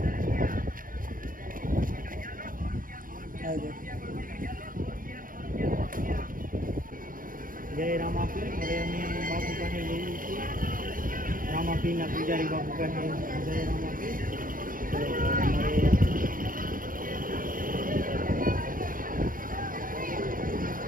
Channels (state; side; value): late; left; 0.40 ms